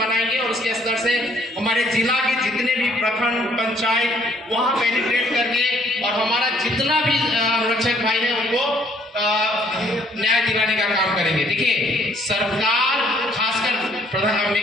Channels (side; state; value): both; normal; correlation 0.63